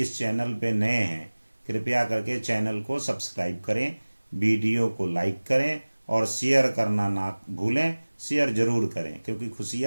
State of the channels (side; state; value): both; inverted; correlation -1.00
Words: इस चैनल पे नए हैं, कृपया करके चैनल को सब्सक्राइब करें, वीडियो को लाइक करें और शेयर करना ना भूलें। शेयर जरूर करें क्योंकि